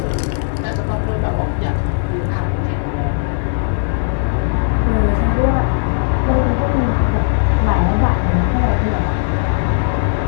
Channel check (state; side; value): silent; right; digital silence